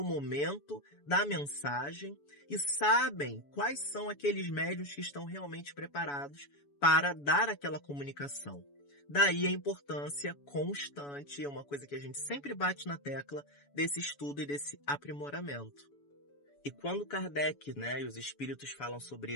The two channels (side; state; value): right; late; 7.0 ms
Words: momento, da mensagem, e sabem quais são aqueles médiuns que estão realmente preparados para dar aquela comunicação. Daí a importância constante, é uma coisa que a gente sempre bate na tecla, desse estudo e desse aprimoramento. E quando Kardec, né, e os espíritos falam sobre